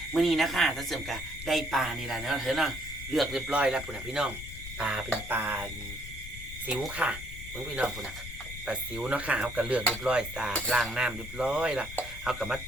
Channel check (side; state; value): left; noise; rumble, 11 dB below the sound